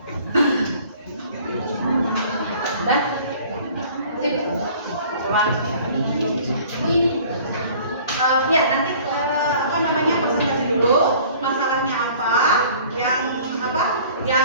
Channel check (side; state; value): both; inverted; correlation -0.50